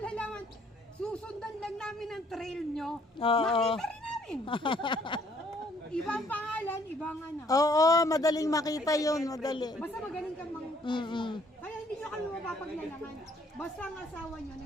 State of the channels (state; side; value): normal; both; correlation 0.64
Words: Susundan lang namin ang trail nyo. Oo. Nakita rin namin. Ibang pangalan, ibang ano. Oo, madaling makita yun, madali. Basta magaling kang Kaya hindi nyo kami mapapaglalaman. Basta ang asawa nyo,